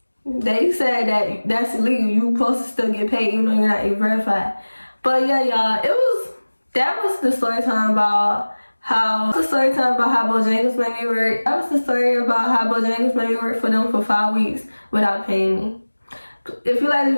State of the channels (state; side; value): inverted; both; correlation -1.00